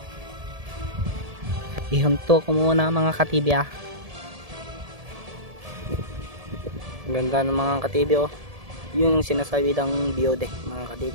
Ihunto ko muna mga ka-TV ah. Ganda ng mga ka-TV oh. Yun yung sinasabi ng biodeck mga ka-TV.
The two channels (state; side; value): late; left; 1.7 ms